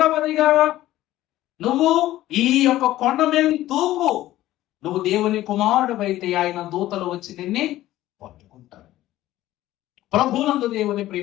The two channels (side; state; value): right; quieter; 15.0 dB